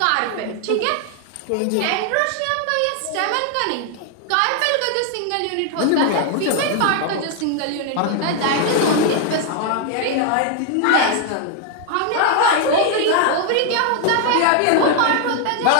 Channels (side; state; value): both; different; correlation 0.00